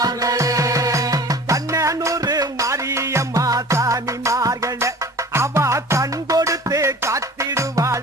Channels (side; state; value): both; normal; correlation 0.43